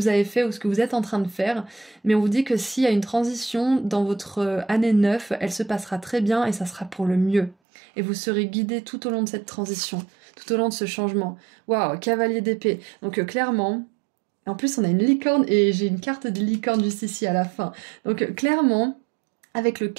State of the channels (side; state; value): left; drops out; at 7.6 s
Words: avez fait ou ce que vous êtes en train de faire, mais on vous dit que s'il y a une transition dans votre année 9, elle se passera très bien et ça sera pour le mieux. Et vous serez guidé tout au long de cette transition, tout au long de ce changement. Waouh, cavalier d'épée. Donc clairement, en plus on a une licorne et j'ai une carte de licorne juste ici à la fin. Donc clairement, avec le